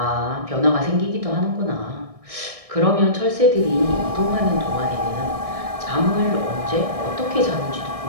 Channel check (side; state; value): left; late; 1.6 ms